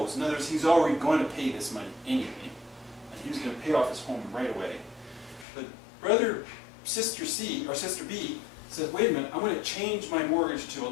In other words, he's already going to pay this money anyway. And he was going to pay off his home right away. But sister C, or sister B, says, wait a minute, I'm going to change my mortgage to a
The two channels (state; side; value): drops out; right; at 5.5 s